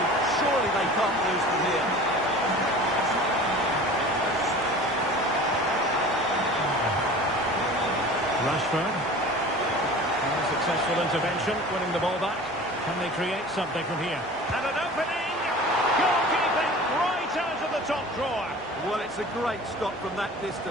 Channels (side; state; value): both; normal; correlation 0.40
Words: Surely they can't lose from here. Rashford. Successful intervention, winning the ball back. Can they create something from here? And an opening! Goalkeeping right out of the top drawer. Well, it's a great stop from that